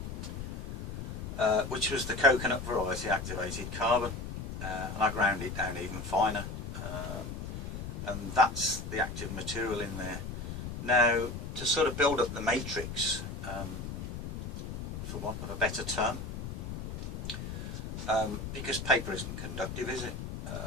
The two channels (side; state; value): left; noise; rumble, 6 dB below the sound